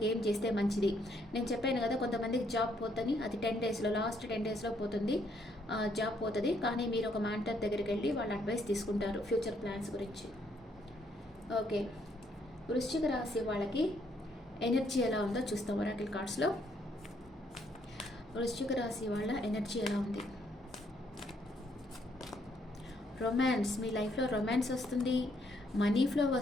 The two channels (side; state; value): both; normal; correlation 0.71